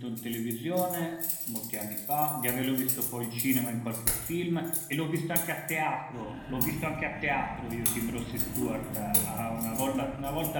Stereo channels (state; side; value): identical; both; correlation 1.00